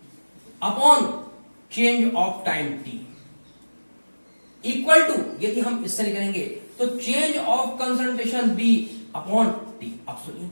upon change of time t equal to, यदि हम इससे निकलेंगे तो change of concentration b upon t. अब सुनिए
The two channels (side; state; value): both; inverted; correlation -1.00